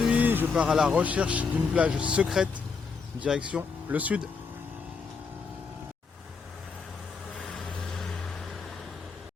je pars à la recherche d'une plage secrète, direction le sud.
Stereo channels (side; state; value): right; quieter; 5.1 dB